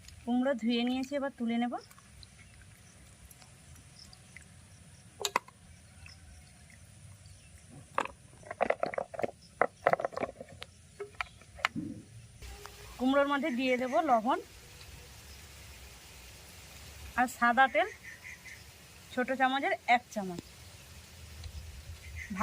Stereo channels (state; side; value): identical; both; correlation 1.00